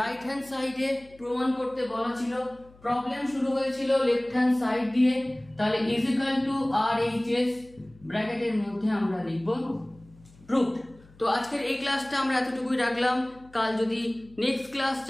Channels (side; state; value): left; noise; hum, 26 dB below the sound